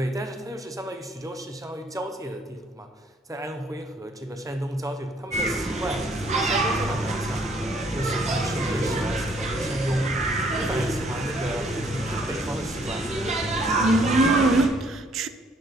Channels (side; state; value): both; normal; correlation 0.65